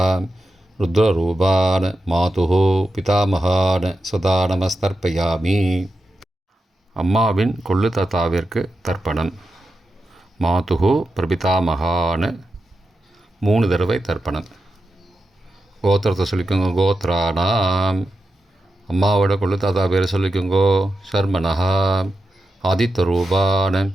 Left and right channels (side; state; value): both; normal; correlation 0.89